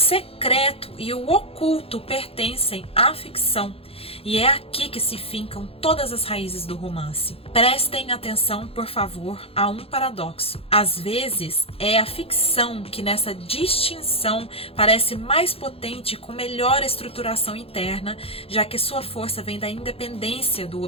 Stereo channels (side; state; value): right; late; 0.28 ms